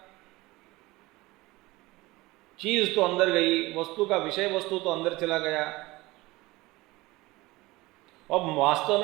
चीज तो अंदर गई, वस्तु का विषय वस्तु तो अंदर चला गया। अब वास्तव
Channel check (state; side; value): quieter; left; 20.5 dB